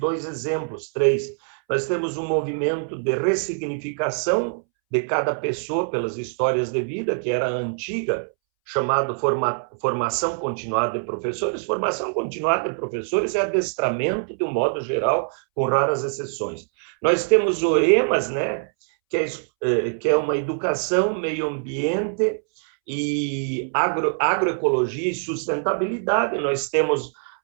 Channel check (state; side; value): silent; left; 63 dB below the other